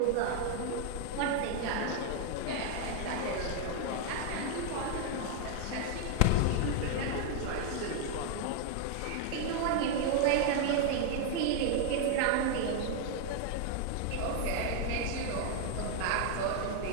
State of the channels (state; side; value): different; both; correlation 0.00